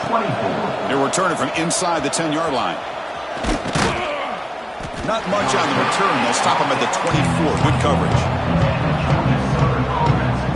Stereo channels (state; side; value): identical; both; correlation 1.00